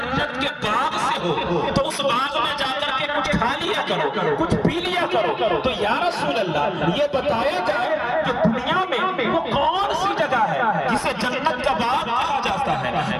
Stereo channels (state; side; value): identical; both; correlation 1.00